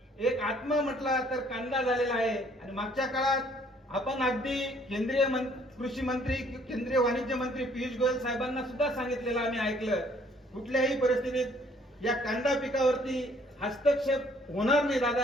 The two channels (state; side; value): normal; both; correlation 0.61